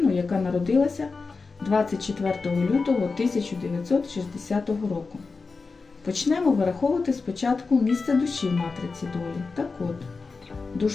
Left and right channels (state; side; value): quieter; right; 4.3 dB